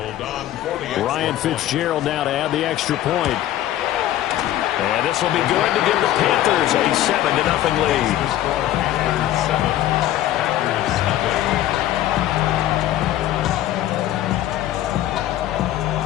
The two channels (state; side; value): quieter; right; 13.3 dB